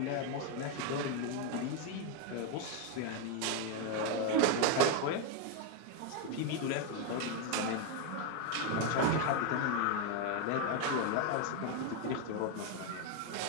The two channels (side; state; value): both; different; correlation 0.01